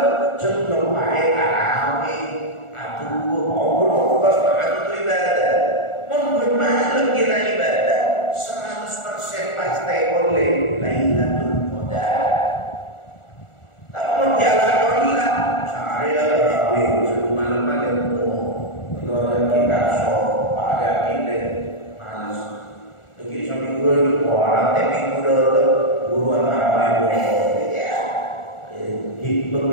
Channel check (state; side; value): late; right; 1.4 ms